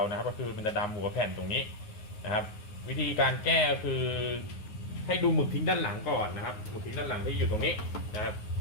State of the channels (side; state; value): right; late; 9.6 ms